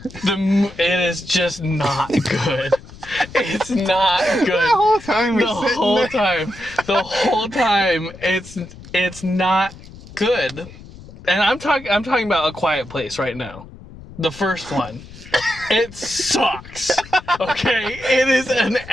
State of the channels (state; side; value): noise; left; rumble, 18 dB below the sound